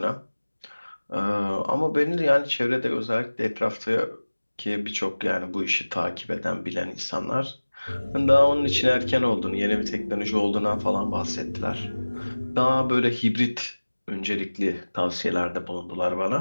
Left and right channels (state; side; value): inverted; both; correlation -1.00